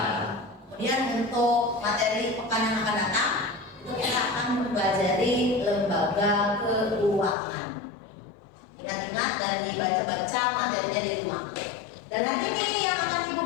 Kemudian untuk materi pekan yang akan datang itu kita akan mempelajari lembaga keuangan. Ingat-ingat dan dibaca-baca materinya di rumah. Dan nanti ini yang akan Ibu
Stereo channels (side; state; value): right; drops out; at 7.4 s